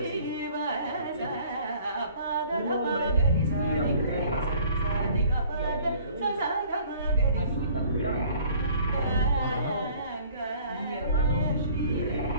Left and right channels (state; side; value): inverted; both; correlation -0.53